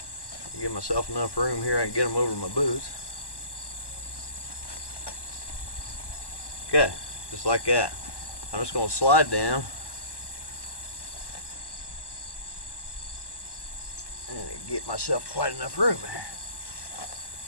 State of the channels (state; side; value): late; right; 1.1 ms